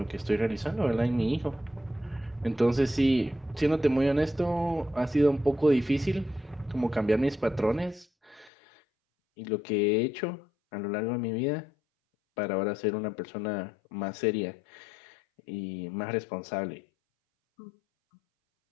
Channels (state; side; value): drops out; right; at 8.5 s